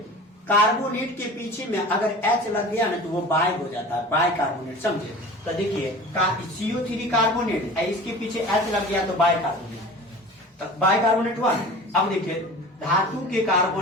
कार्बोनेट के पीछे में अगर H लग गया ना तो वो बाय हो जाता है, बाय कार्बोनेट, समझे? तो देखिए CO3 कार्बोनेट, इसके पीछे H लग गया तो बाय कार्बोनेट, तो बाय कार्बोनेट हुआ। अब देखिए धातु के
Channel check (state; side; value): normal; both; correlation 0.38